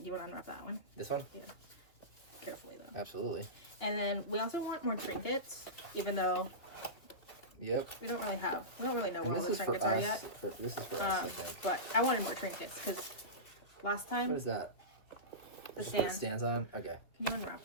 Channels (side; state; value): right; late; 2.8 ms